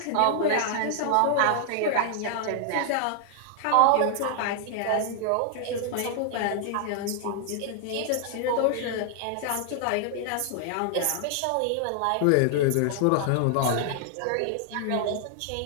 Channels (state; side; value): different; both; correlation 0.00